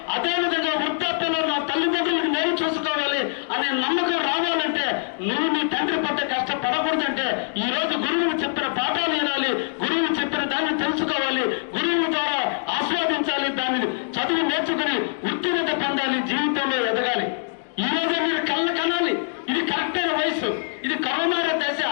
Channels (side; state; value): right; silent; digital silence